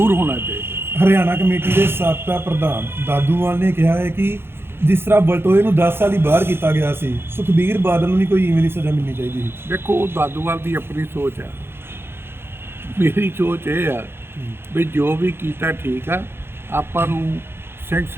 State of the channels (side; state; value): left; late; 0.11 ms